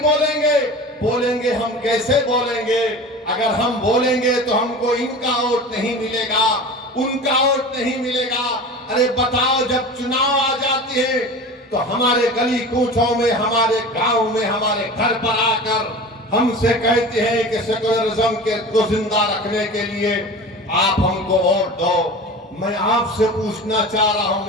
बोलेंगे? बोलेंगे हम कैसे बोलेंगे? अगर हम बोलेंगे तो हमको इनका वोट नहीं मिलेगा, उनका वोट नहीं मिलेगा। अरे बताओ, जब चुनाव आ जाते हैं तो हमारे गली कूचों में, हमारे गांव में, हमारे घर पर आकर हमसे कहते हैं कि सेकुलरिज्म को जिंदा रखने के लिए आप हमको वोट दो। मैं आपसे पूछना चाह रहा हूं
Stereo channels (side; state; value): both; normal; correlation 0.34